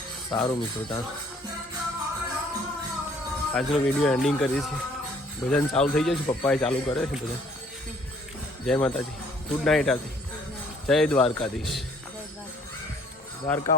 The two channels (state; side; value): normal; both; correlation 0.59